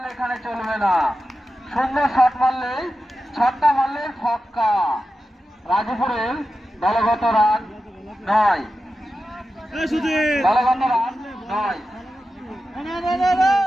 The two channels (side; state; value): both; normal; correlation 0.92